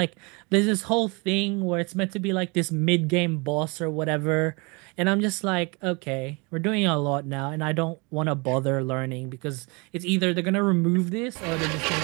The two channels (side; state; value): left; quieter; 29.3 dB